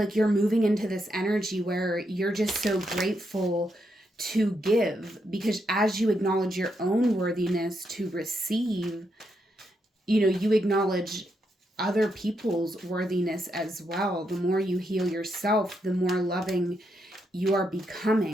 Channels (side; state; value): both; normal; correlation 0.81